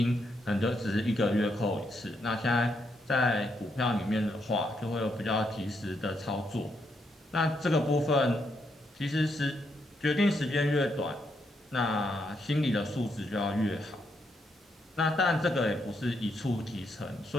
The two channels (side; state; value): both; normal; correlation 0.78